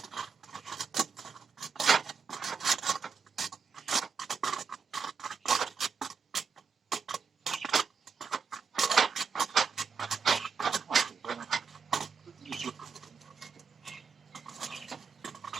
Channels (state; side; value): quieter; left; 5.8 dB